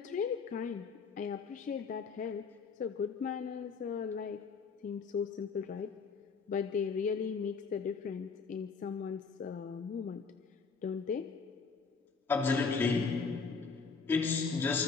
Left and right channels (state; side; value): quieter; right; 5.2 dB